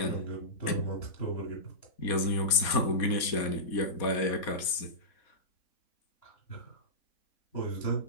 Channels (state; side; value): late; right; 4.1 ms